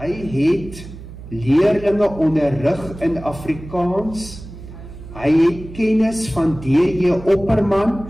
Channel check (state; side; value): noise; right; hum, 14 dB below the sound